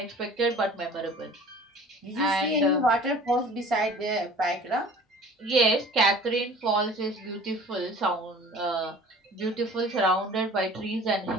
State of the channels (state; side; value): normal; both; correlation 0.45